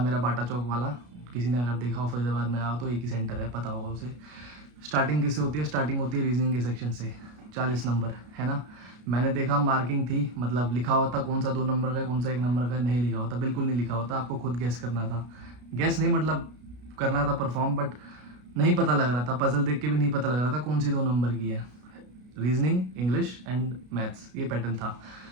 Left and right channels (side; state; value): left; late; 33 ms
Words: मेरा बाटा चौक वाला। किसी ने अगर देखा हो फरीदाबाद में आओ तो एक ही सेंटर है, पता होगा उसे। स्टार्टिंग किससे होती है? स्टार्टिंग होती है रीजनिंग के सेक्शन से, 40 नंबर है ना। मैंने देखा मार्किंग थी, मतलब लिखा होता कौन सा 2 नंबर का है, कौन सा 1 नंबर का है, नहीं लिखा होता, बिल्कुल नहीं लिखा होता। आपको खुद गेस करना था। गेस नहीं मतलब करना था परफॉर्म, बट नहीं पता लग रहा था। पजल देख के भी नहीं पता लग रहा था कौन सी 2 नंबर की है। रीजनिंग, इंग्लिश एंड मैथ्स, ये पैटर्न था।